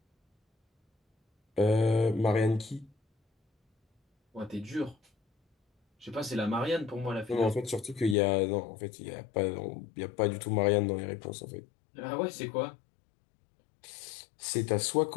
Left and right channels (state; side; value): drops out; right; at 8.2 s